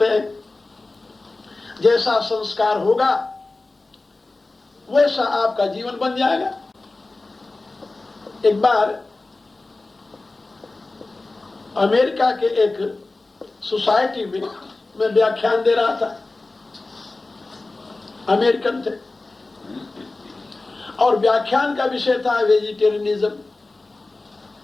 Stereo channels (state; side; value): quieter; right; 3.2 dB